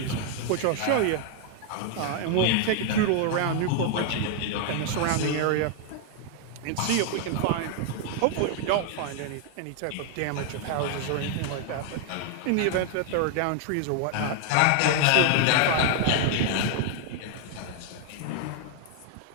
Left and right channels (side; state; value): both; different; correlation 0.00